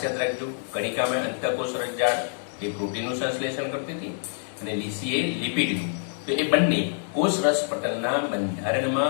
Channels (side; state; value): right; silent; 58 dB below the other